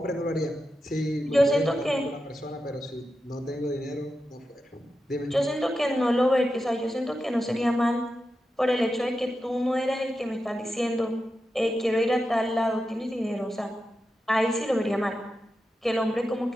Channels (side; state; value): both; normal; correlation 0.90